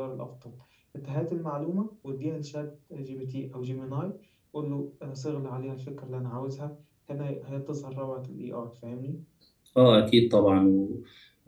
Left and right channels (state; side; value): identical; both; correlation 1.00